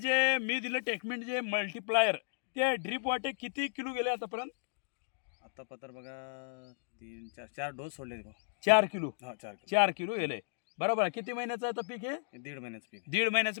मी दिलं टेकमेंट जे मल्टीप्लायर ते ड्रीप वाटे किती किलो गेले आतापर्यंत? आता पत्र बघा 4 डोस सोडले. 4 किलो. हा 4 किलो. 4 किलो गेले. बरोबर. किती महिन्याचं आता पीक आहे? 1.5 महिन्याचं पीक. 1.5 महिन्याचं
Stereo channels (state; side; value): silent; right; digital silence